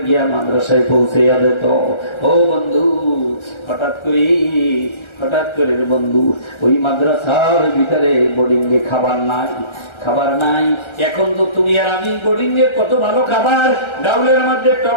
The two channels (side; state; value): right; late; 1.3 ms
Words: গিয়া মাদ্রাসায় পৌঁছে যেত। ও বন্ধু হঠাৎ করে বন্ধু ওই মাদ্রাসার ভিতরে বোর্ডিং এ খাবার নাই। এখন তো তুমি আর আমি বোর্ডিং এ কত ভালো খাবার, ডাউলের মধ্যে